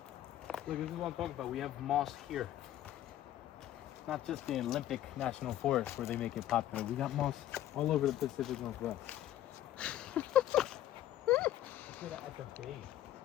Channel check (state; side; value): quieter; right; 12.8 dB